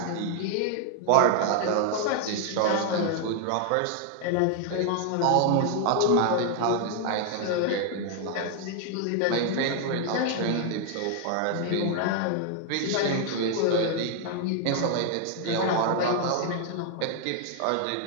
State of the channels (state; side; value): different; both; correlation 0.00